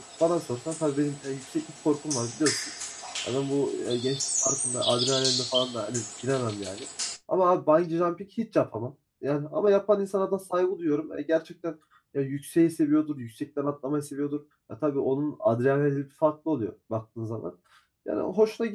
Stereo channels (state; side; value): identical; both; correlation 1.00